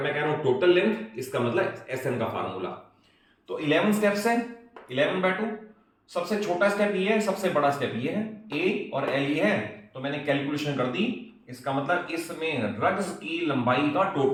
मैं कह रहा हूं टोटल लेंथ, इसका मतलब SN का फार्मूला। तो 11 स्टेप्स है, 11/2। सबसे छोटा स्टेप ये है, सबसे बड़ा स्टेप ये है, A और L ये है, तो मैंने कैलकुलेशन कर दी। इसका मतलब इसमें रग्स की लंबाई का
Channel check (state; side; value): identical; both; correlation 1.00